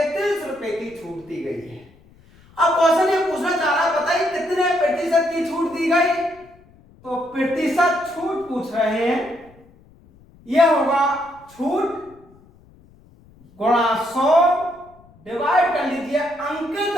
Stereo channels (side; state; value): left; noise; rumble, 27 dB below the sound